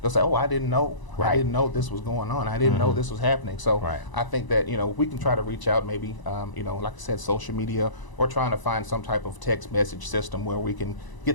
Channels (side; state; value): right; late; 1.0 ms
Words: they'll say, oh, I didn't know. I didn't know this was going on. I didn't know this was happening. So I think that, you know, we can try to reach out maybe, you know, like I said, social media, or trying to find some type of text message system where we can